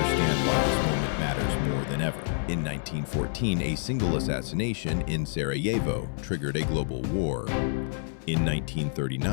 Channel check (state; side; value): silent; right; 59 dB below the other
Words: why this moment matters more than ever. In 1914, a single assassination in Sarajevo triggered a global war. In